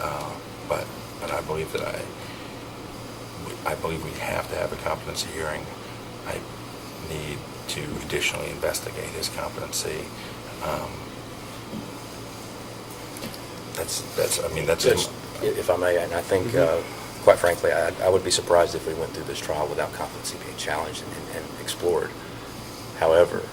But I believe that I believe we have to have a competency hearing. I need to additionally investigate his competency. That's. If I may, and I think, quite frankly, I would be surprised if we went through this trial without competency being challenged and explored. However,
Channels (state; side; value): identical; both; correlation 1.00